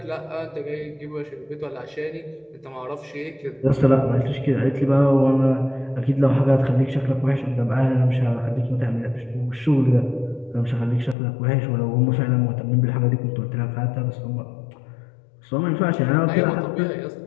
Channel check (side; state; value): right; drops out; at 11.2 s